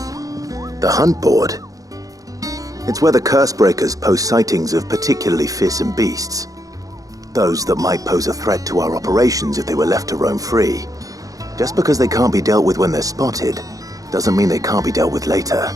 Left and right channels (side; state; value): left; late; 0.17 ms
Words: The hunt board? It's where the Cursebreakers post sightings of particularly fearsome beasts. Those that might pose a threat to our operations if they were left to roam free. Just because they can't be dealt with when they're spotted, doesn't mean they can't be dealt with later.